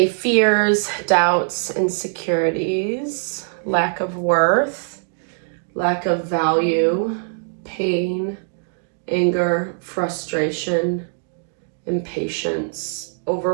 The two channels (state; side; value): silent; left; 65 dB below the other